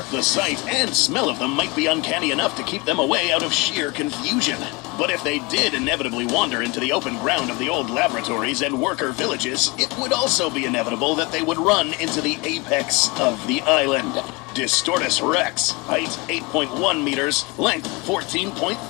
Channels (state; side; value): quieter; right; 26.5 dB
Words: the sight and smell of them might be uncanny enough to keep them away out of sheer confusion. But if they did inevitably wander into the open ground of the old laboratories and worker villages, it would also be inevitable that they would run into the apex of the island. Distortus Rex, height 8.1 meters, length